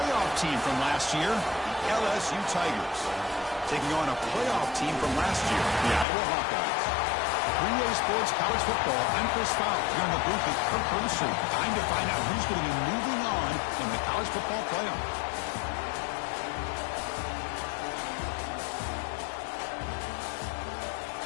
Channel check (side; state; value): right; drops out; at 6.1 s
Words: team from last year, the LSU Tigers, taking on a playoff team from last year, the Iowa Hawkeyes. Three-Way Sports College Football, I'm Chris Fowler. Here in the booth with Kirk Brewster. Time to find out who's going to be moving on in the college football playoff.